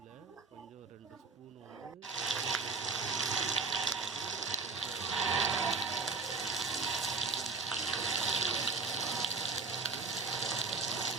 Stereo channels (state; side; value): quieter; left; 4.3 dB